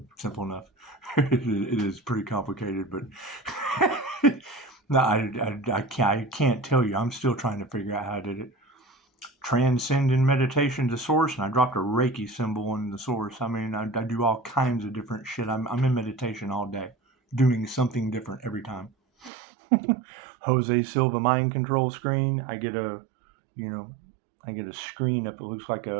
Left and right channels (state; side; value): drops out; left; at 19.3 s